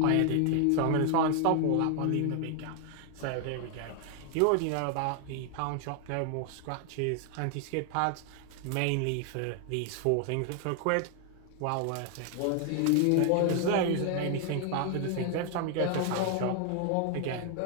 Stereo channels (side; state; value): both; different; correlation 0.00